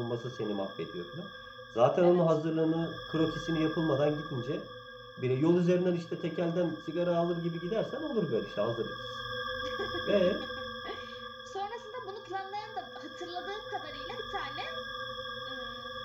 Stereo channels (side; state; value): both; identical; correlation 1.00